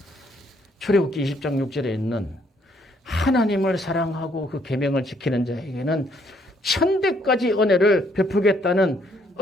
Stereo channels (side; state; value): both; normal; correlation 0.68